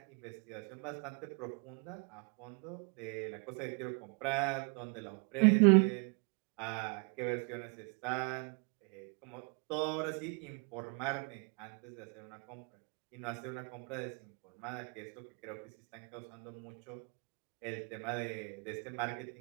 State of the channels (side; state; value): left; quieter; 35.3 dB